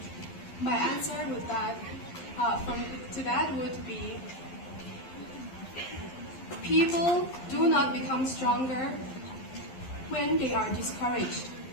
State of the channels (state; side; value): late; right; 11 ms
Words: My answer would would be, people do not become stronger when they are discouraged.